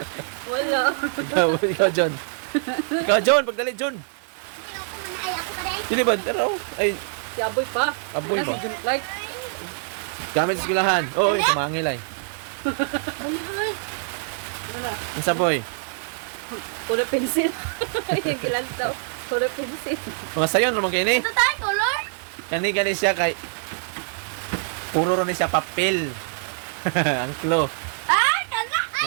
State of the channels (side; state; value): left; silent; digital silence